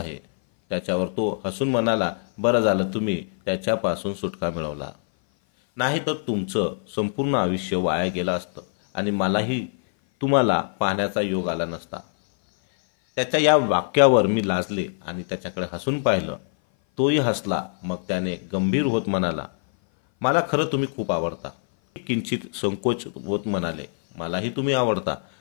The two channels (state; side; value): silent; right; 58 dB below the other